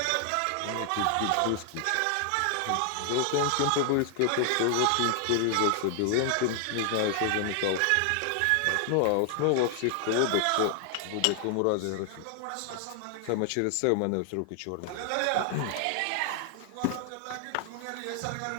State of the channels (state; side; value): different; both; correlation 0.00